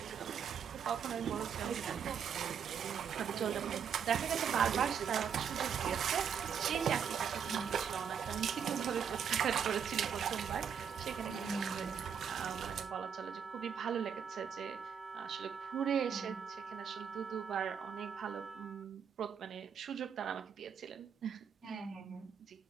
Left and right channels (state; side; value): quieter; left; 7.4 dB